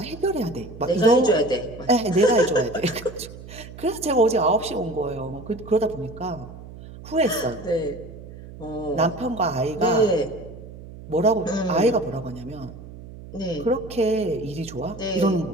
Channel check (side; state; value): right; noise; hum, 15 dB below the sound